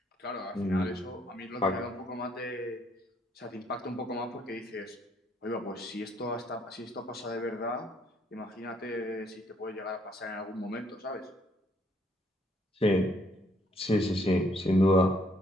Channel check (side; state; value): both; normal; correlation 0.68